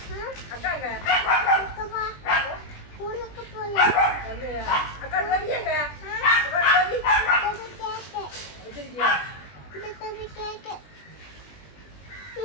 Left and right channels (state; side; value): late; right; 20 ms